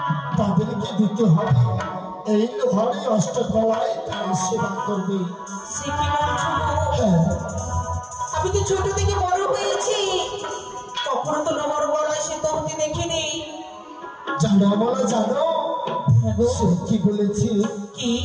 তাদেরকে দিতে হবে। এই লোহার অষ্টকলায় তারা সেবা করবে। সে কি বলছো? আমি তো ছোট থেকে বড় হয়েছি, কখনো তো লোহার গলায় সে তহতে দেখিনি। জানো বলা জানো সে কি বলেছি? কি?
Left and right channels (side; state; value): both; identical; correlation 1.00